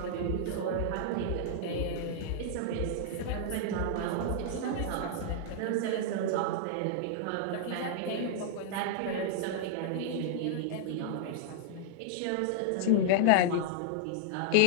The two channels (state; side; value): different; both; correlation -0.01